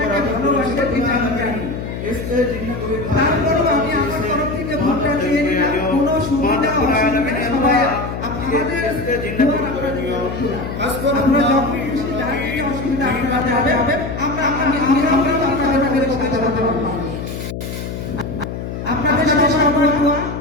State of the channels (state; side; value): noise; left; hum, 7 dB below the sound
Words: ভালোবাসেন, এটা আমি জানি। তারপরেও আমি আমার তরফ থেকে ভোটটা চেয়ে নিলাম। কোনো সুবিধা অসুবিধা সবাই আপনাদের আপনারা যখন খুশি যার থেকে অসুবিধা আপনারা যাবে, আমি আপনাদের কথা বলতে পারবো। আপনাদের সাথে সবার দোয়া,